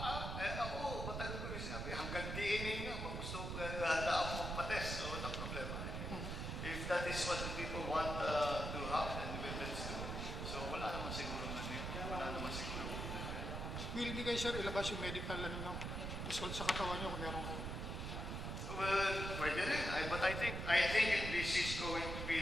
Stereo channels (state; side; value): noise; right; rumble, 4 dB below the sound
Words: matagal ko rin sinabi, hanggang DNA nga, gusto handa ako magpa-test. So, walang problema. If that is what the people want to have, then let's do it. So, wala naman siguro Will hindi kayo, sir, ilabas yung medical result sa katawan nyo kung meron kayo? Well, pwede rin. But I think this is going to